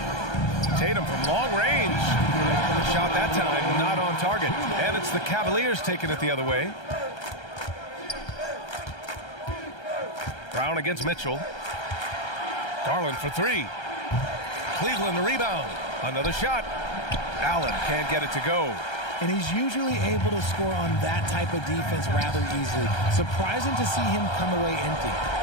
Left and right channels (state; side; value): late; right; 1.3 ms